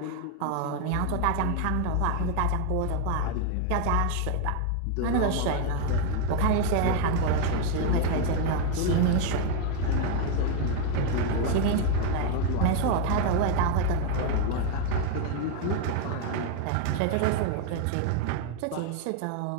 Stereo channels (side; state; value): both; different; correlation 0.01